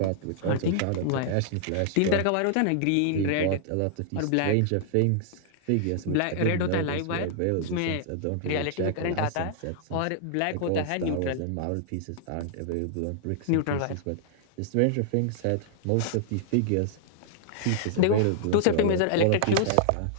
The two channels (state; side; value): different; both; correlation -0.01